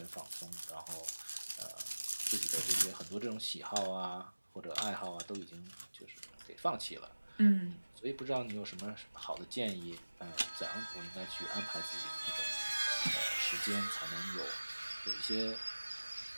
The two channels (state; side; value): inverted; both; correlation -1.00